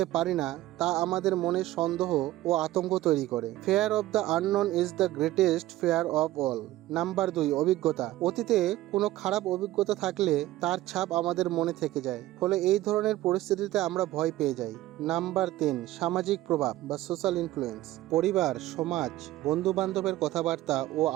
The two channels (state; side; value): quieter; left; 15.8 dB